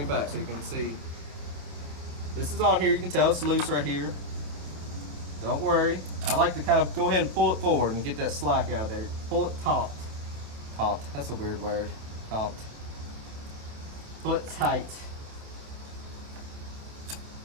back so you can see. This is on here. You can tell it's loose right here. Don't worry. I like to kind of go ahead and pull it forward and get that slack out of there. Pull it taut. Taut. That's a weird word. Taut. Pull it tight.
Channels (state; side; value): late; left; 28 ms